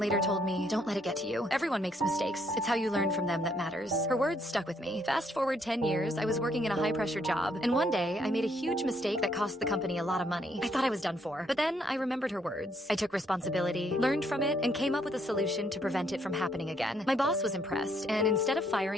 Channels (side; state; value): both; normal; correlation 0.71